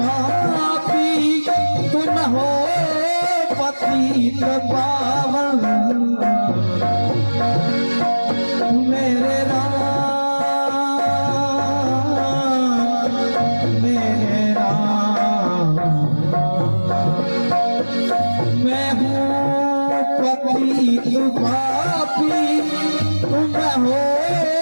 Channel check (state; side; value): inverted; both; correlation -1.00